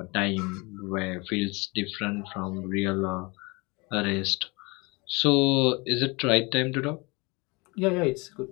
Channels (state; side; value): quieter; right; 26.8 dB